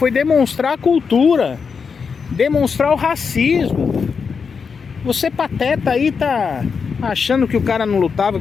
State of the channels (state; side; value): quieter; right; 5.7 dB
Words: demonstrar a cultura, demonstrar o racismo. Você pateta aí tá achando que o cara não lutava,